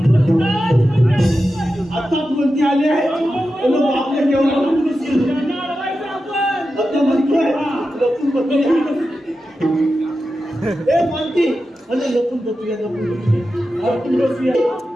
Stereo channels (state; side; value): normal; both; correlation 0.91